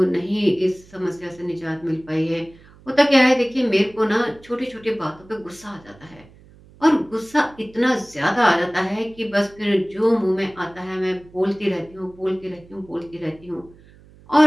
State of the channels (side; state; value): right; noise; hum, 25 dB below the sound